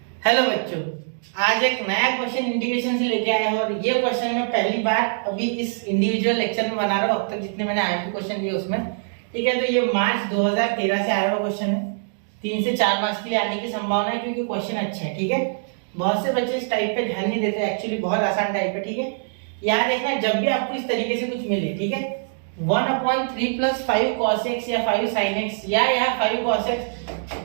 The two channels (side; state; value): left; silent; digital silence